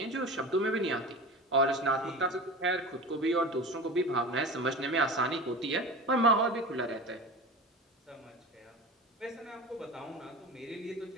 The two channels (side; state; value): both; normal; correlation 0.31